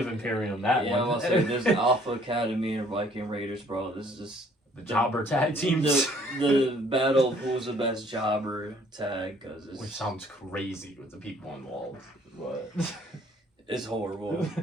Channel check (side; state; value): both; normal; correlation 0.60